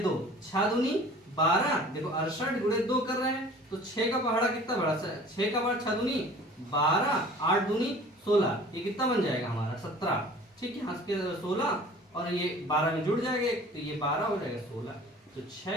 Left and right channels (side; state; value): both; normal; correlation 0.46